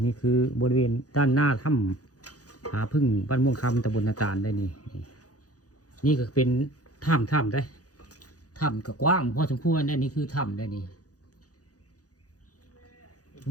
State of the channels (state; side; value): late; right; 0.67 ms